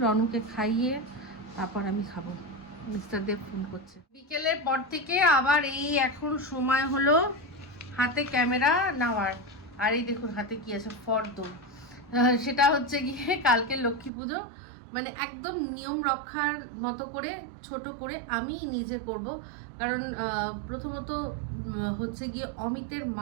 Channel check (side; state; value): left; drops out; at 14.1 s